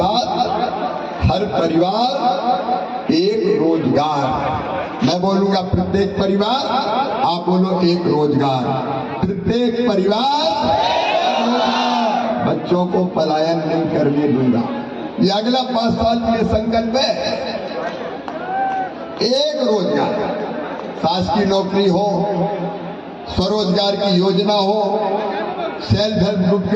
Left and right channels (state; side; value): identical; both; correlation 1.00